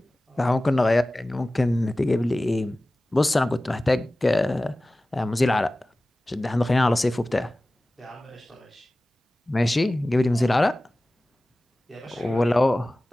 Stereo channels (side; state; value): both; normal; correlation 0.97